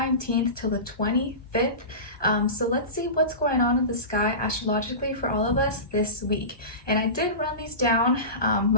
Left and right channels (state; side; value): late; right; 1.2 ms